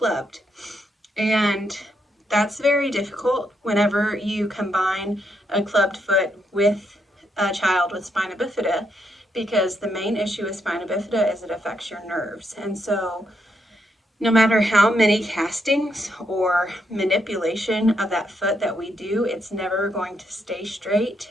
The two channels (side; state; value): both; normal; correlation 0.78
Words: And that's very difficult whenever you combine a clubbed foot with a child with spina bifida, because the main issue with spina bifida is it affects your nerves. And so no matter how many castings or manipulation of that foot that we do, it's never going to stay straight